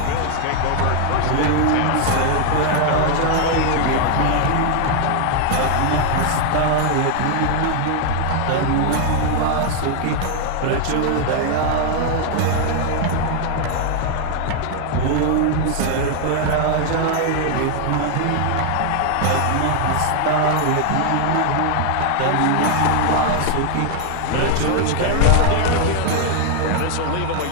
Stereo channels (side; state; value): both; different; correlation 0.00